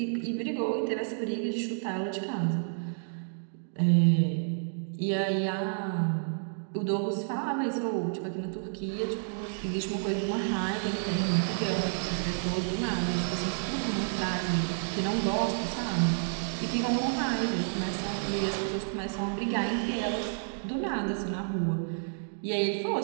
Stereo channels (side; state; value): left; silent; digital silence